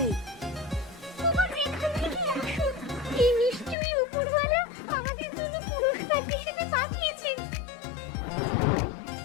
তোমার এখান থেকে আসো, এই নিশ্চয়ই উপরওয়ালা আমাদের জন্য পুরস্কার হিসেবে পাঠিয়েছেন।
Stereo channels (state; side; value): drops out; right; at 3.8 s